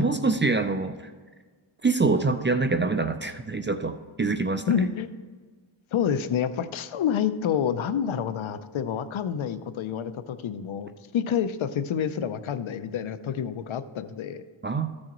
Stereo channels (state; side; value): normal; both; correlation 0.15